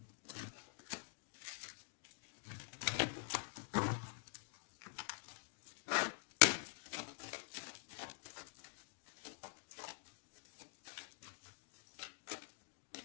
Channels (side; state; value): right; silent; digital silence